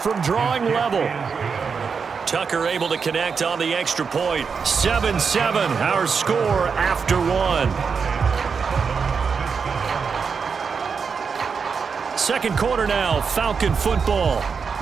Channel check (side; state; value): left; quieter; 5.7 dB